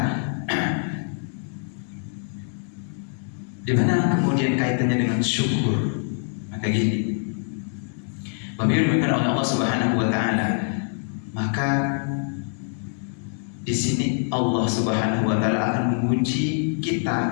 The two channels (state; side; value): silent; right; 59 dB below the other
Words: di mana kemudian kaitannya dengan syukur? Maka gini, Bapak Ibu dimuliakan oleh Allah Subhanahu wa taala, maka di sini Allah Subhanahu wa taala akan menguji